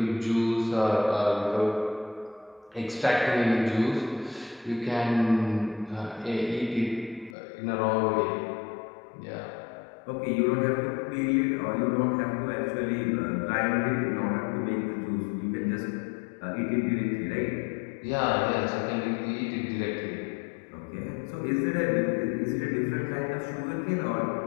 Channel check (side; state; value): right; drops out; at 7.4 s